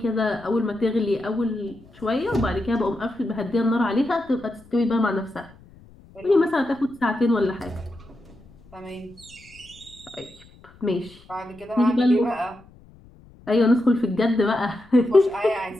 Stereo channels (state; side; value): noise; left; rumble, 25 dB below the sound